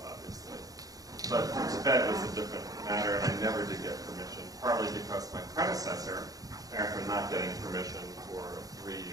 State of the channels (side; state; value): left; late; 0.17 ms